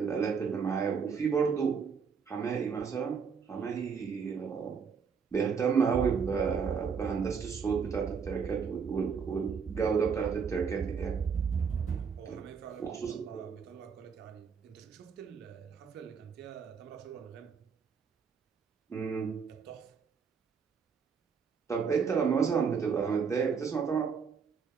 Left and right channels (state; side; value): quieter; left; 6.1 dB